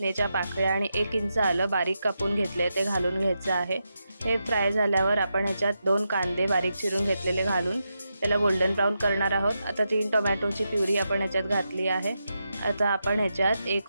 पाकळ्या आणि 1 इंच आलं बारीक कापून घेतले ते घालून घ्यायचं आहे। हे फ्राय झाल्यावर आपण याच्यात 2 कांदे बारीक चिरून घेतलेले घालून त्याला गोल्डन ब्राउन करणार आहोत। आता 3 टोमॅटोची प्युरी आपण याच्यात घातली आहे। आता आपण ह्याच्यात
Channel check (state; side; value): inverted; both; correlation -0.86